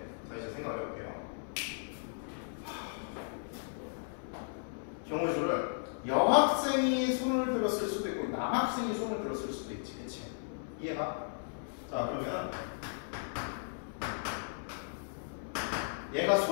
자, 이제 생각을 해볼게요. 경우의 수를 여학생이 손을 들었을 수도 있고 남학생이 손을 들었을 수도 있지, 그치? 이해가? 자, 그러면 얘가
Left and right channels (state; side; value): silent; right; 54 dB below the other